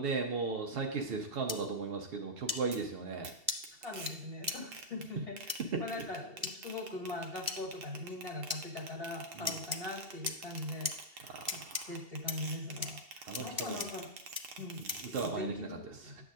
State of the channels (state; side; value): late; left; 2.7 ms